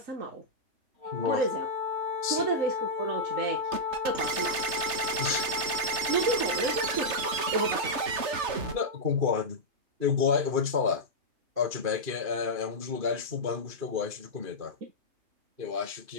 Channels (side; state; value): left; late; 3.3 ms